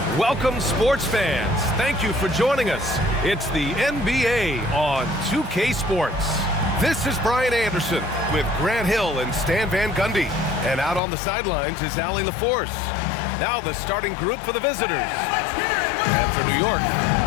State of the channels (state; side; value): drops out; right; at 11.0 s